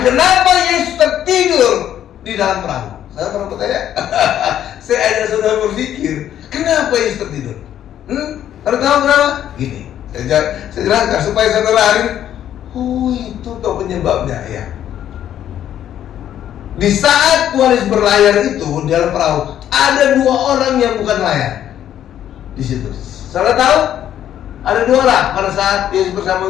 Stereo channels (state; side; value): quieter; right; 10.8 dB